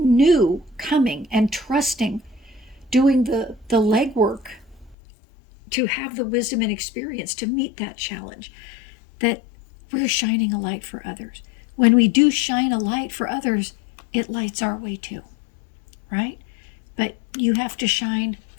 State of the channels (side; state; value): right; drops out; at 5.0 s